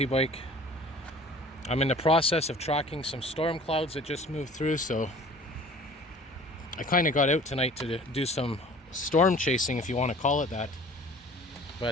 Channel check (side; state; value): both; normal; correlation 0.47